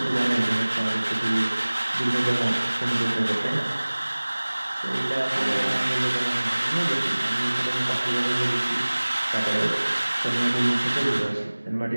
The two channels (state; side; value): inverted; both; correlation -1.00